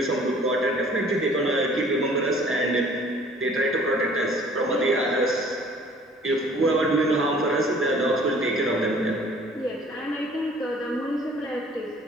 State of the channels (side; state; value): both; normal; correlation 0.53